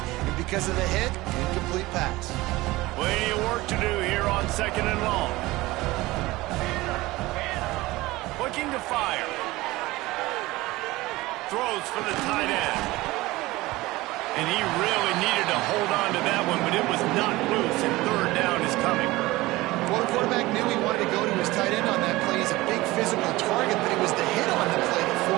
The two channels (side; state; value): left; quieter; 19.6 dB